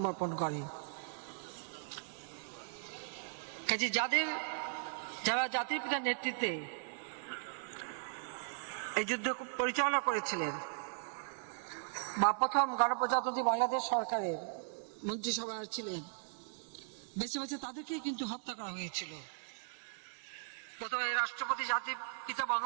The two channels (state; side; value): silent; left; 52 dB below the other